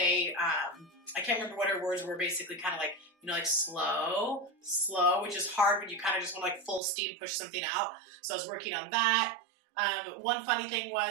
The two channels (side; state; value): left; drops out; at 6.8 s